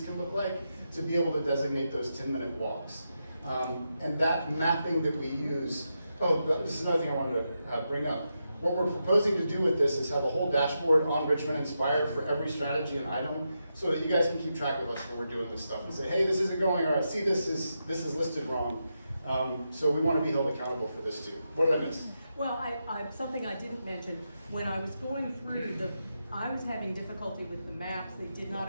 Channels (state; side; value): inverted; both; correlation -0.86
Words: can look like to be able to designate those 10-minute walks. And that mapping that we use, this is another thing I wanted to bring up. What we're proposing to do with this is have a whole dashboard on Richmond Inspire for every strategy and item, so that you guys can keep track of us when we're doing this stuff and say, hey, this isn't going, or I see this is listed wrong. So we want to be held accountable for this too. What did I miss? Well, something I didn't mention, when I was going through I was having difficulty with the maps. They did not